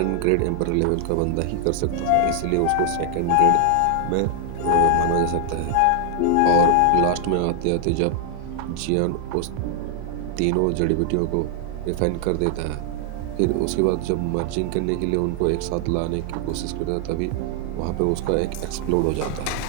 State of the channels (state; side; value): different; both; correlation 0.00